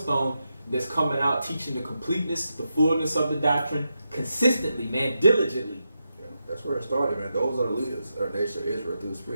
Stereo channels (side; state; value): both; inverted; correlation -0.87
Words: that's coming out teaching the completeness, the fullness of the doctrine consistently, man, diligently. Yeah, that's where it started, man. Those are the leaders of the nation of Israel through the